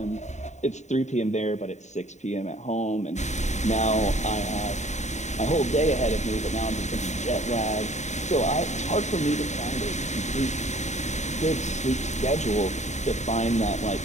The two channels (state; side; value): late; right; 0.34 ms